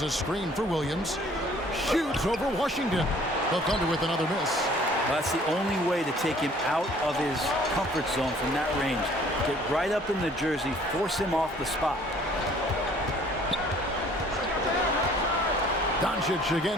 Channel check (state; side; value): normal; both; correlation 0.56